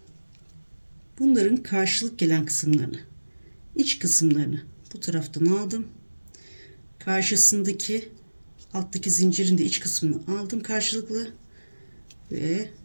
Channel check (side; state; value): both; inverted; correlation -1.00